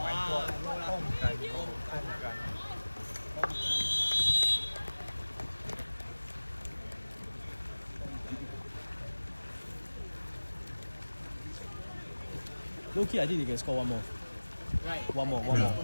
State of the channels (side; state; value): both; inverted; correlation -1.00